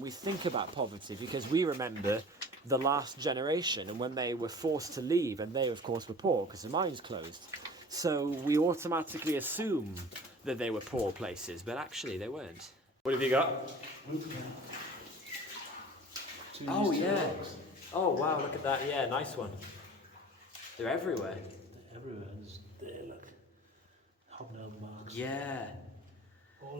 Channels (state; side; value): normal; both; correlation 0.42